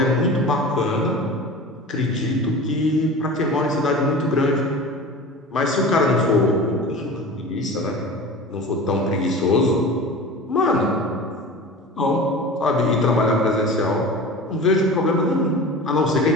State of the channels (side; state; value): both; normal; correlation 0.35